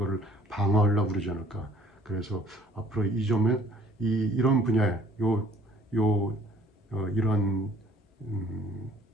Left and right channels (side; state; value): both; normal; correlation 0.57